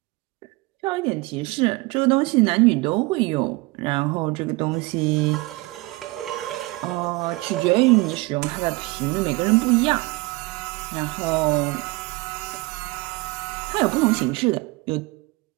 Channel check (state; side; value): quieter; left; 23.5 dB